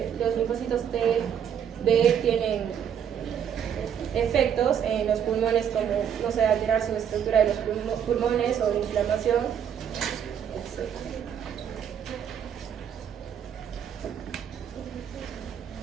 los linfocitos T, B tienen efectos en los pulmones, como, no sé, alterar su estructura de los pulmones o inflamación, etc.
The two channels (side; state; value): left; quieter; 8.6 dB